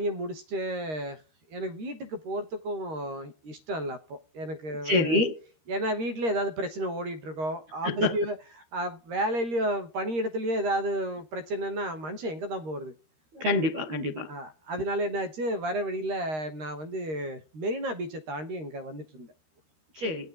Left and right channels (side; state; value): left; late; 13 ms